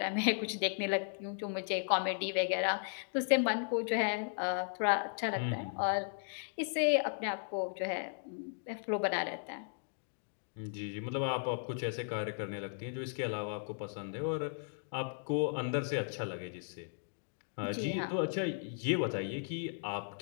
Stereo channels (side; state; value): right; silent; digital silence